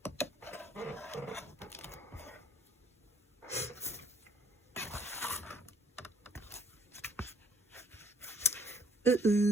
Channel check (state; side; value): normal; both; correlation 0.59